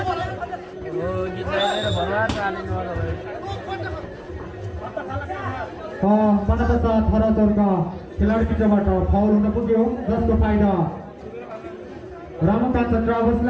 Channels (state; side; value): identical; both; correlation 1.00